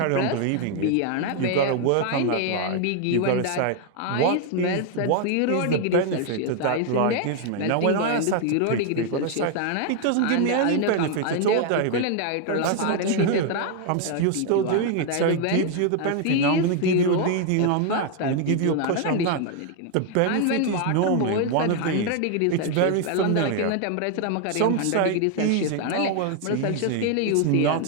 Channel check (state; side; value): different; both; correlation 0.00